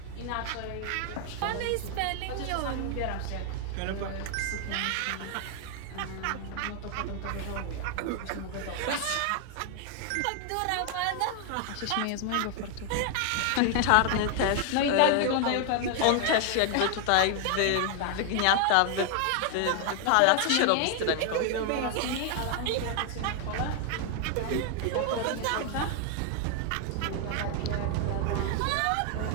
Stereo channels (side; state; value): both; different; correlation 0.00